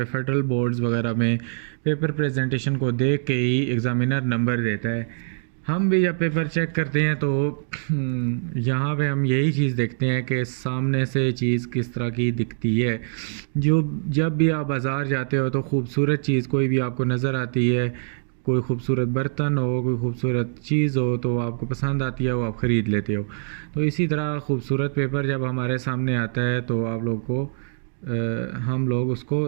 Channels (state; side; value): silent; left; digital silence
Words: फेडरल बोर्ड्स वगैरह में पेपर प्रेजेंटेशन को देख के ही एग्ज़ामिनर नंबर देता है। हम भी जब पेपर चेक करते हैं तो यहाँ पे हम यही चीज़ देखते हैं कि सामने से चीज़ किस तरह की दिखती है। जो जब भी आप बाज़ार जाते हो तो ख़ूबसूरत चीज़ कोई भी आपको नज़र आती है, कोई ख़ूबसूरत बर्तन हो, कोई ख़ूबसूरत चीज़ हो तो आपको पसंद आती है, वो आप ख़रीद लेते हो। तो इसी तरह ख़ूबसूरत पेपर जब हमारे सामने आता है तो आप लोग को हम लोग उसको